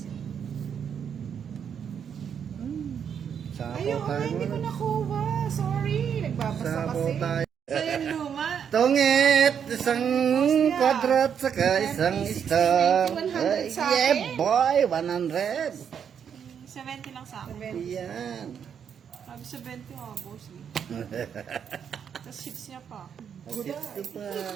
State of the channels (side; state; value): left; quieter; 7.8 dB